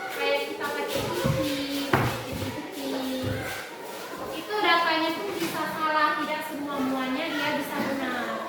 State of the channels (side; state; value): both; identical; correlation 1.00